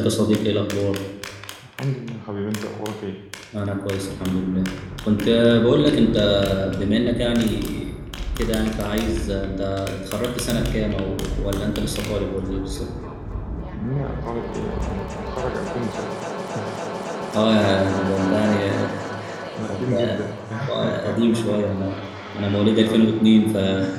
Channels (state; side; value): identical; both; correlation 1.00